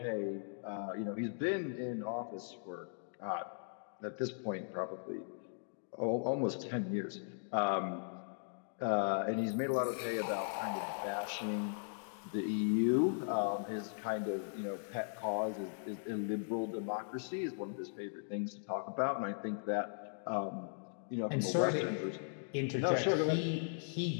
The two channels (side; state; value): right; silent; digital silence